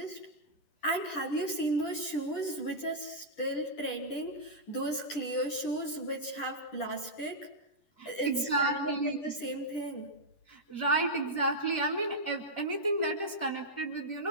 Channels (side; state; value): right; late; 10 ms